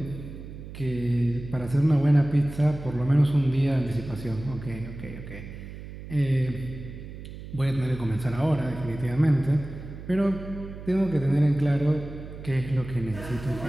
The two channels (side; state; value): right; noise; hum, 12 dB below the sound